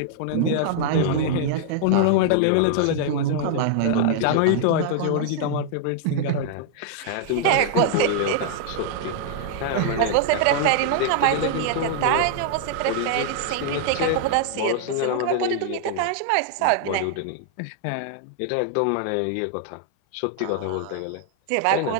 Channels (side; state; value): both; different; correlation -0.01